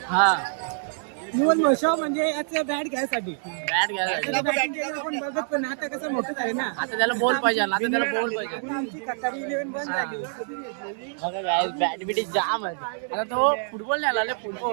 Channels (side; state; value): left; silent; digital silence